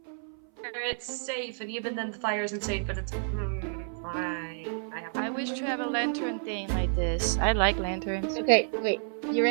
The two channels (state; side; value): silent; left; 58 dB below the other